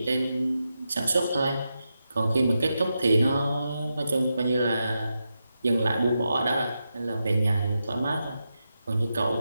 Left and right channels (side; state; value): both; inverted; correlation -0.87